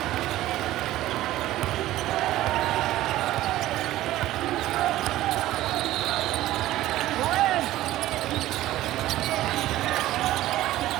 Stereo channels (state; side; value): quieter; left; 15.2 dB